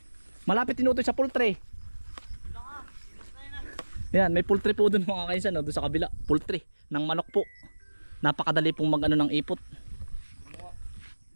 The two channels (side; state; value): both; inverted; correlation -1.00